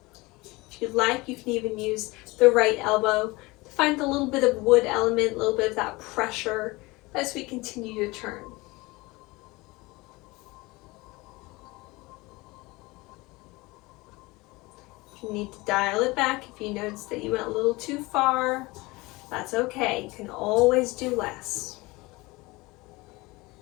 If you'd like, you can even use the right elbow to find a little bit of wood element, a little bit of that pressure as we continue to turn. If you need to dial it back, if you notice that you went a little too far, that's okay. You can always do less.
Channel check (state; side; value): quieter; right; 22.7 dB